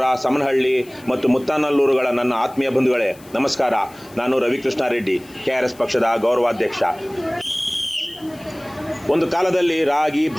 ಸಮನಹಳ್ಳಿ ಮತ್ತು ಮುತ್ತಾನಲ್ಲೂರುಗಳ ನನ್ನ ಆತ್ಮೀಯ ಬಂಧುಗಳೇ ನಮಸ್ಕಾರ. ನಾನು ರವಿಕೃಷ್ಣ ರೆಡ್ಡಿ, KRS ಪಕ್ಷದ ಗೌರವಾಧ್ಯಕ್ಷ. ಒಂದು ಕಾಲದಲ್ಲಿ ರಾಗಿ,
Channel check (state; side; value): noise; left; hiss, 24 dB below the sound